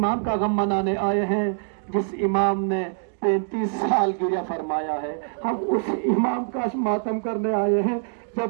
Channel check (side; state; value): left; silent; 62 dB below the other